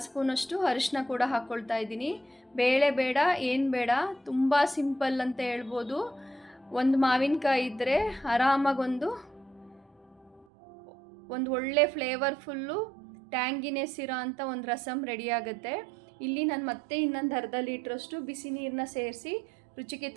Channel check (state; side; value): drops out; left; at 10.5 s